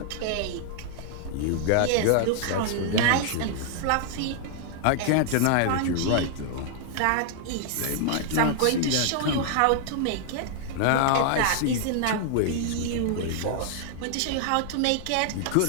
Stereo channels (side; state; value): both; different; correlation -0.01